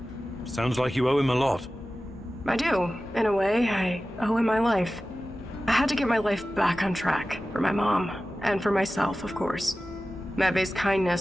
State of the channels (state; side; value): normal; both; correlation 0.95